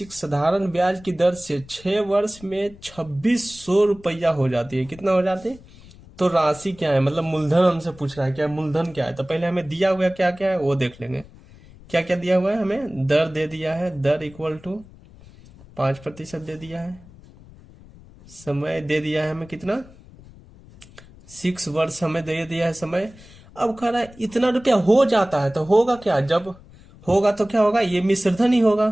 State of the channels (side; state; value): left; noise; rumble, 22 dB below the sound